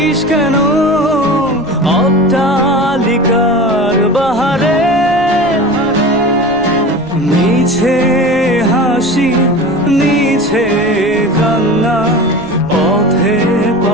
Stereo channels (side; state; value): left; noise; rumble, 24 dB below the sound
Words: কেন অট্টালিকার বাহারে? মিছে হাসি মিছে কান্না পথে